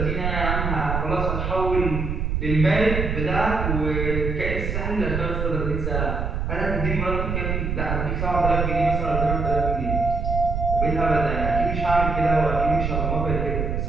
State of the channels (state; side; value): noise; right; rumble, 1 dB below the sound